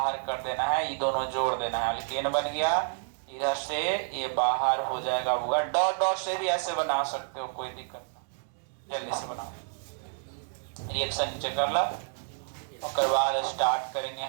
कर देना है, ये दोनों जोड़ देना है, अल्केन बन गया। इधर से ये बाहर हो जाएगा होगा। डॉट डॉट से भी ऐसे बना सकते हो, कोई दिक्कत ना, जल्दी से बनाओ। रिएक्शन नीचे कर ला, उसके बाद स्टार्ट करेंगे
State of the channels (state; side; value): silent; left; digital silence